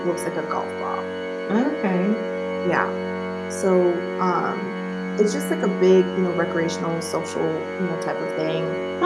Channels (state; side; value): identical; both; correlation 1.00